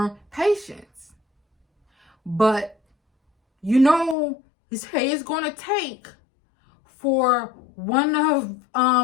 patience. But say it's going to take for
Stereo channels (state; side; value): drops out; right; at 4.2 s